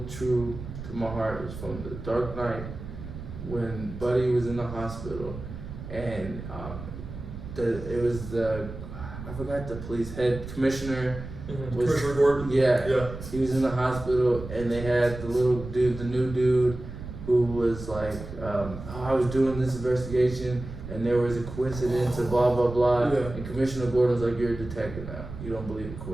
true to my heart was from The Dark Knight, when Buddy was in the hospital, and I forgot the police head commissioner. Commissioner Gordon. Yeah. He was in the hospital, and they had the new dude, who was like, I was doing this investigation, and there was a coincidence, and blah blah blah. Yeah. And Commissioner Gordon was like, "You're a detective now. You don't believe in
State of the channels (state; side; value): noise; right; rumble, 10 dB below the sound